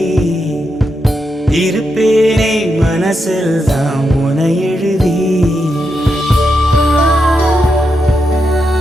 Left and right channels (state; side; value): normal; both; correlation 0.84